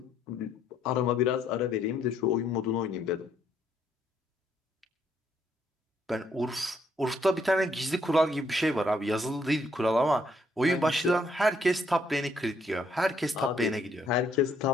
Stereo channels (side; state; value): both; normal; correlation 0.71